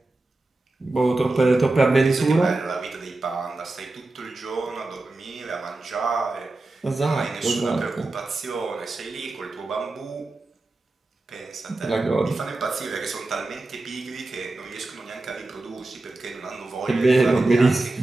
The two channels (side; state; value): left; quieter; 3.0 dB